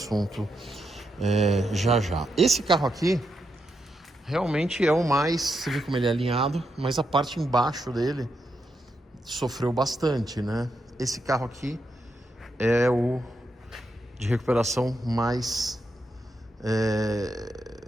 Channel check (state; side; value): normal; both; correlation 0.83